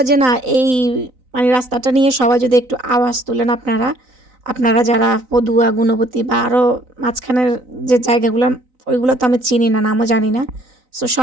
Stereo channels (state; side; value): late; left; 3.9 ms